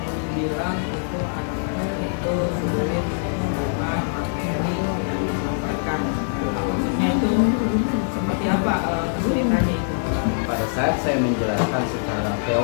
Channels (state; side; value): silent; right; digital silence